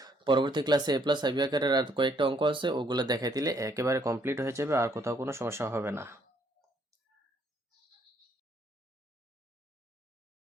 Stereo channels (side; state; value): both; normal; correlation 0.68